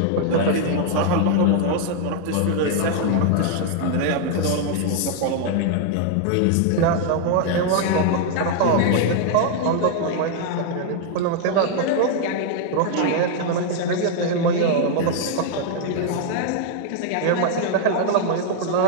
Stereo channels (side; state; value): both; different; correlation 0.00